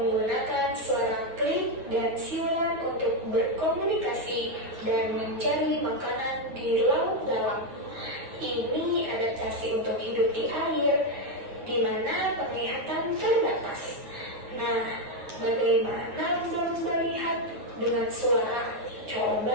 suara klik dan siulan untuk berkomunikasi dan mencari makanan di laut dalam. Ini adaptasi untuk hidup di air, di mana penglihatan terbatas. Nah, bagaimana lumba-lumba lihat dengan suara?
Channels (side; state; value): left; late; 9.3 ms